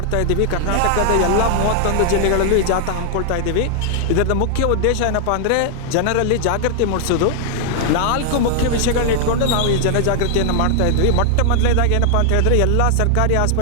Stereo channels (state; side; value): different; both; correlation 0.00